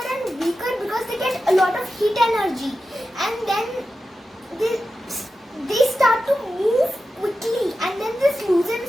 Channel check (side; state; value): both; normal; correlation 0.92